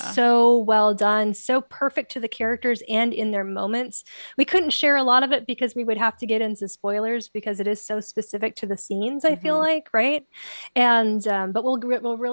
Yeah. so well done, so perfect to the characters and in their moments. We couldn't share a lot of it because we would have to get into spoilers because it is so specific to the scenes, I feel Hmm. like, right? And but we'll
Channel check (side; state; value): both; inverted; correlation -1.00